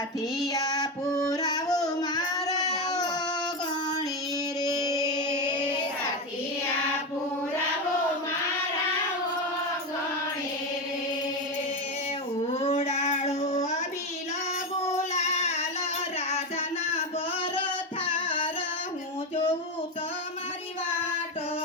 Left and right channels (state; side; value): normal; both; correlation 0.14